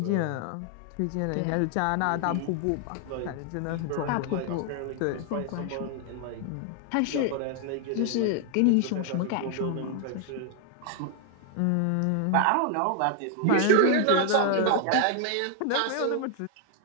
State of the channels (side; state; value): both; different; correlation 0.00